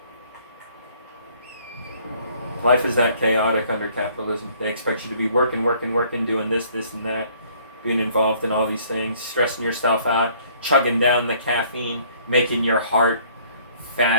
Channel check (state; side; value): inverted; both; correlation -0.59